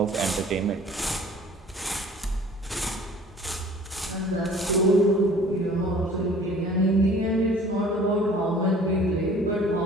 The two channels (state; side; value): normal; both; correlation 0.49